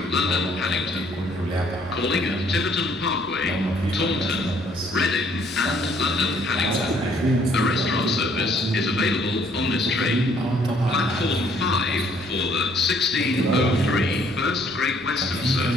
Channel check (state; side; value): normal; both; correlation 0.64